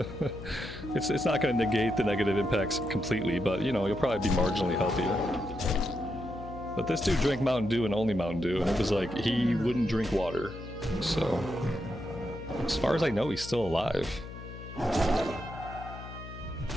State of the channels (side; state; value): left; noise; hum, 12 dB below the sound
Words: It's not going to negate the negative impacts completely, but you know, you'll probably be marginally healthier. But this dude drank Mountain Dew and only Mountain Dew, and it was like he wouldn't drink water. So, as far as I know, he's still alive.